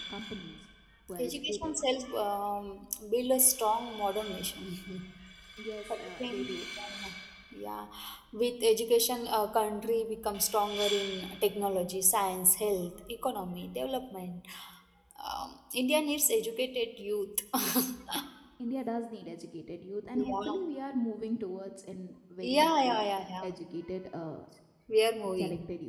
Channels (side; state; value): both; identical; correlation 1.00